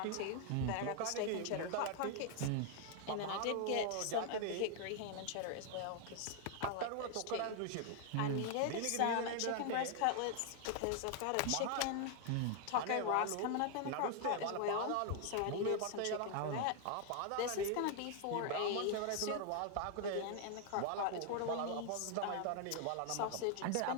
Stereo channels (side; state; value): both; different; correlation 0.00